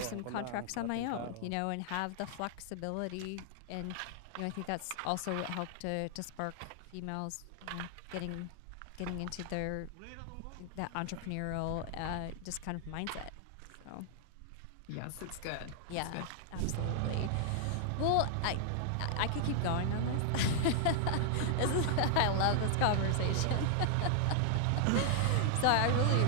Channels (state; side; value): different; both; correlation 0.00